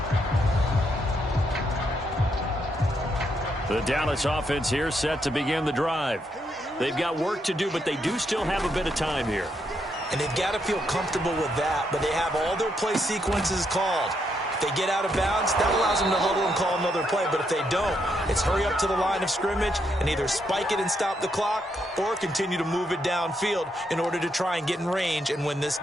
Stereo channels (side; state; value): both; normal; correlation 0.78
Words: The Dallas offense here set to begin the drive. They've got work to do, but they do still have a bit of time here. And they've got to feel comfortable with that, but they have all their play sequences called. If they get out of bounds, that allows them to huddle and call another play. But if they don't, it's hurry up to the line of scrimmage and either spike it and stop the clock or continue to move it downfield in order to try and get in range and win this